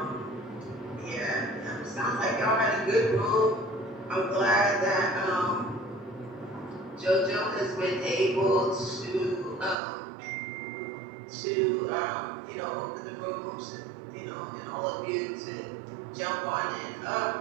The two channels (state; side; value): drops out; left; at 9.8 s